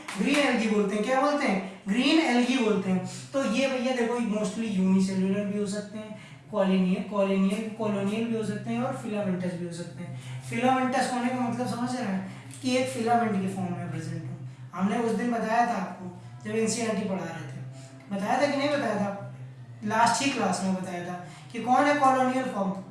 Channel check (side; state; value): both; identical; correlation 1.00